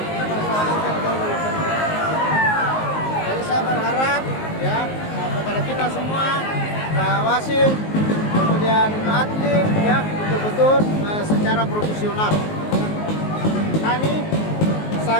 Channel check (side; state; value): right; late; 19 ms